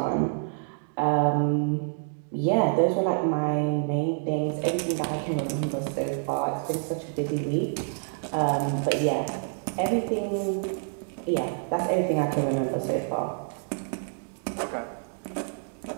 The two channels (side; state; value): left; silent; digital silence